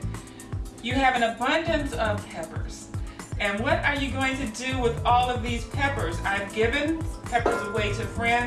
You have an abundance of peppers, and what are you going to do with all of these peppers? I've given peppers away to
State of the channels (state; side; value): identical; both; correlation 1.00